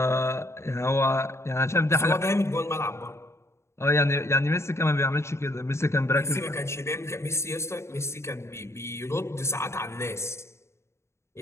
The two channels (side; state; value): right; late; 0.13 ms